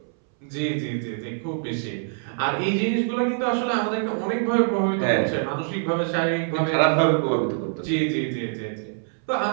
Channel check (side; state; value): left; silent; 62 dB below the other